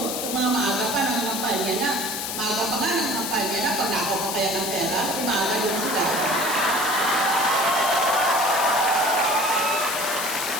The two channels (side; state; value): left; noise; hiss, 4 dB below the sound